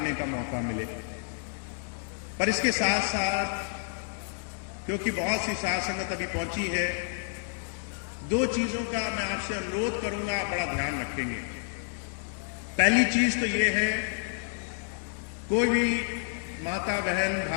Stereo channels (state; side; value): silent; right; digital silence